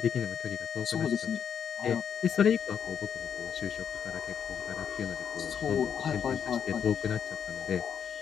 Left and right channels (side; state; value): right; quieter; 7.8 dB